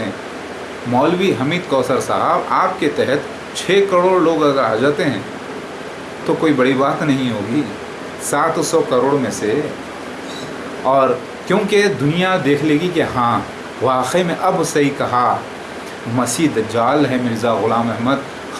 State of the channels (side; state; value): both; identical; correlation 1.00